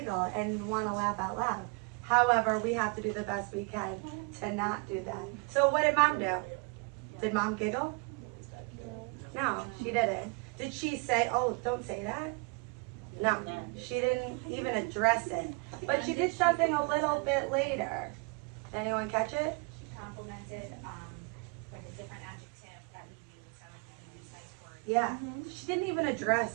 and want to laugh out loud. However, we have to do the best we can to not do that. So what did mom do? Did mom giggle? No, she didn't. Did she say, oh, don't say that? No, she didn't even address it. But she did something a little bit later. Anyone catch it? She complimented Yeah, she didn't even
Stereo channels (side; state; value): left; quieter; 32.8 dB